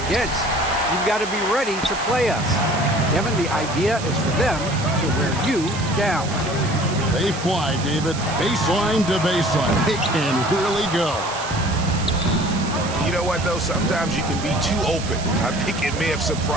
You've got to be ready to play us. Kevin, the idea is for them to wear you down. They fly, David. Baseline to baseline. They can really go. You know what, though? Sometimes you can be too open. I think it may have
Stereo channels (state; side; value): noise; right; hiss, 11 dB below the sound